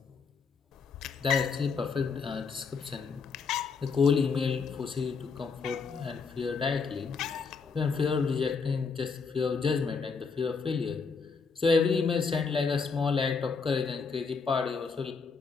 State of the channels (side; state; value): right; quieter; 5.1 dB